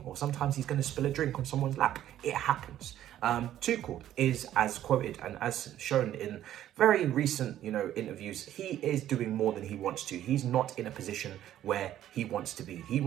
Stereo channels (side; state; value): left; quieter; 12.1 dB